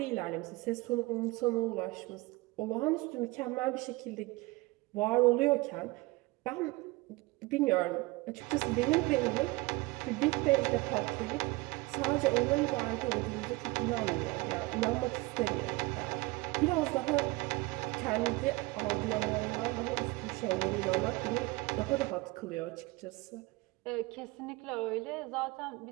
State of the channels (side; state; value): left; quieter; 22.7 dB